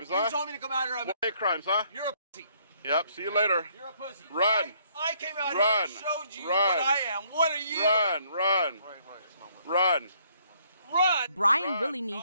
huh? You told me to come out here. More hate crimes, huh? You're a pussy. Yep, see you later. You're a pussy. Run. I came out Run. here and showed you Run. what I am. What are you? Run, run. Run. Run. Brian really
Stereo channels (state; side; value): inverted; both; correlation -0.66